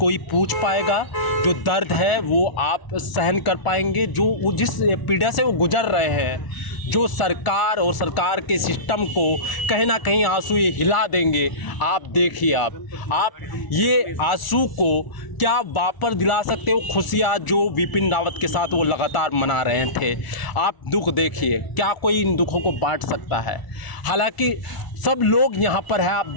पूछ पाएगा? जो दर्द है वो आप सहन कर पाएंगे? जो जिस पीड़ा से वो गुजर रहे हैं, जो सरकार और सरकार के सिस्टम को कहीं ना कहीं आंसू ये हिला देंगे। आप देखिए, आप ये आंसू को क्या वापस दिला सकते हो? खुशियाँ जो बिपिन रावत के साथ वो लगातार मना रहे थे, आप दुख देखिए, क्या कोई इन दुखों को बांट सकता है? हालांकि सब लोग यहाँ पर है, आप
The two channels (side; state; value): right; late; 1.4 ms